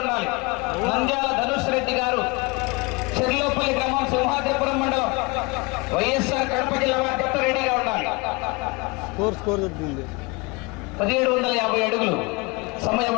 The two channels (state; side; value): quieter; right; 27.1 dB